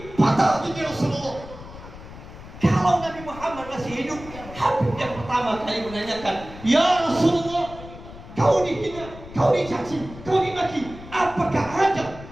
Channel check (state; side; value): noise; left; rumble, 15 dB below the sound